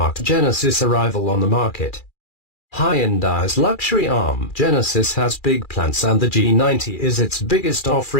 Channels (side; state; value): right; late; 2.4 ms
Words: Genesis' arrival on the market. Hyundai's luxury arm, Genesis, has big plans and the G90 is its biggest